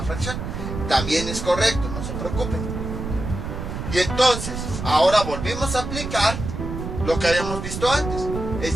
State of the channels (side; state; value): right; noise; rumble, 6 dB below the sound